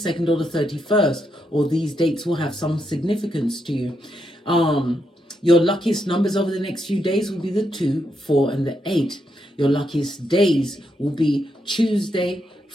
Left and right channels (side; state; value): both; normal; correlation 0.81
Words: or the 31st, or these dates will have some significance to you. Your luckiest numbers over the next few days will be the 2, 4, and the 8. Your luckiest days will be Tuesday,